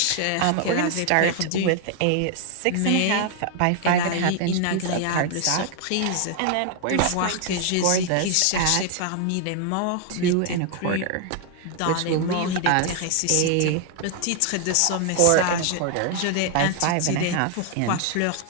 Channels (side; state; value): both; different; correlation 0.00